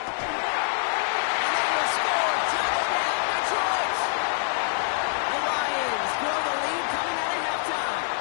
And they will score. Touchdown, Detroit. The Lions grow the lead coming out of halftime.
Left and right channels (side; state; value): right; silent; 61 dB below the other